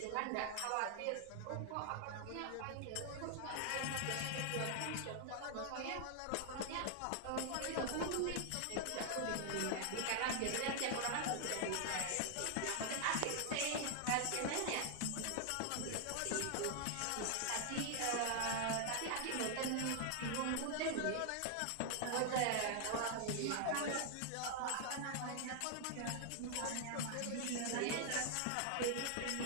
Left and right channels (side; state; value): both; different; correlation 0.00